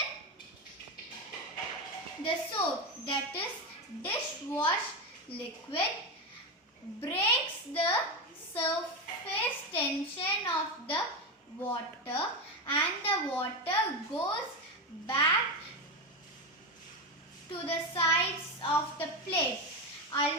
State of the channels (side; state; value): both; normal; correlation 0.14